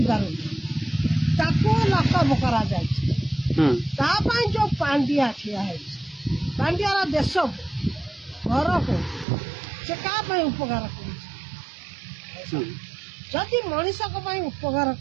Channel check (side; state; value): left; drops out; at 9.2 s